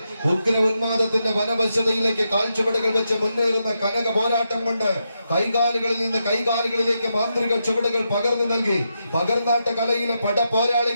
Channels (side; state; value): both; inverted; correlation -0.85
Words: ഉഗ്ര ഉന്മാദത്തിന്റെ വനവശ്യതയിലേക്ക് കാൽച്ചുവടുകൾ വെച്ച് മുന്നേറുന്ന കനക പോരാട്ടം കൊണ്ട് കൈകാലുകളിൽ നിന്ന് കൈകാലുകളിലേക്ക് മാന്ത്രിക ചുവടുകൾ പകർന്നു നൽകി പകർന്നാട്ട കലയിലെ പട